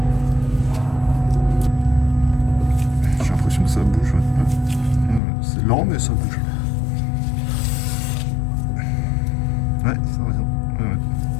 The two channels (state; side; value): drops out; right; at 5.2 s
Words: J'ai l'impression que ça bouge. C'est lent, mais ça bouge. Ouais, ça va bien. Ouais.